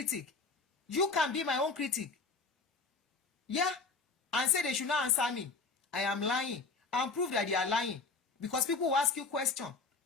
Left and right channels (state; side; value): quieter; right; 4.2 dB